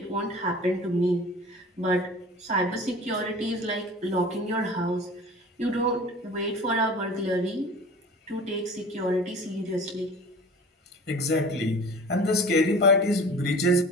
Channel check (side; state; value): both; normal; correlation 0.41